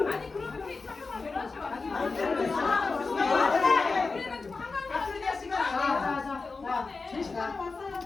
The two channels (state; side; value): quieter; right; 4.1 dB